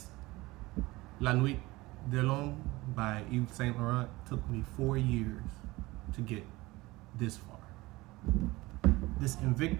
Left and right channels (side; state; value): left; quieter; 20.7 dB